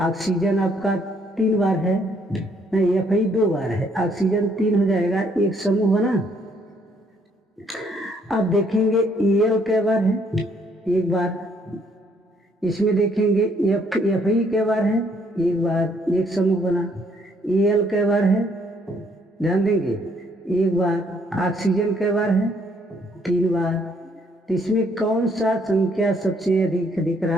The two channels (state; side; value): normal; both; correlation 0.67